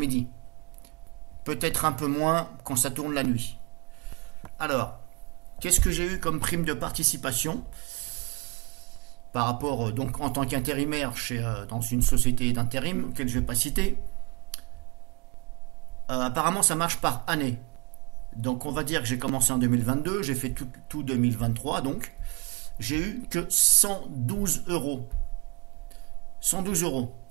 Peut-être un peu moins quand ça tourne la nuit. Alors, qu'est-ce que j'ai eu comme prime de participation par rapport, donc en tant qu'intérimaire dans une société d'intérim, que je ne vais pas citer. Apparemment, ça marche par année. Donc, on va dire que j'ai commencé en 2022, j'ai fait tout 2023, donc j'ai eu que 112 euros. 112 euros.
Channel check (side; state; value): left; quieter; 27.4 dB